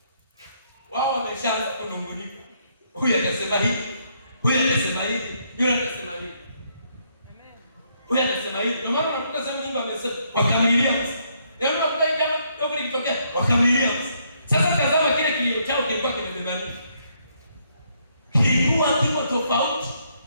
wao wameshaanza kunungunika. Huyu atasema hivi, huyu atasema hivi, yule atasema hivi. Amen. Huyu atasema hivi. Ndio maana unakuta sema Mungu amesema wakamilia. Yaani unakuta jambo kidogo likitokea wakamilia. Sasa tazama kile kilio chao kilikuwa kimebeba nini? Kilikuwa kiko tofauti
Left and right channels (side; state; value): both; inverted; correlation -0.72